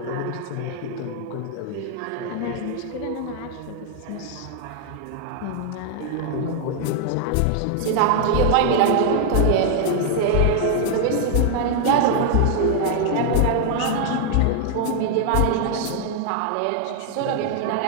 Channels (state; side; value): different; both; correlation 0.00